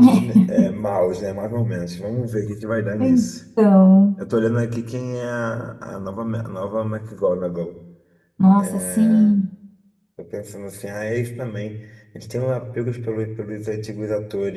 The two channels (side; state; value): both; identical; correlation 1.00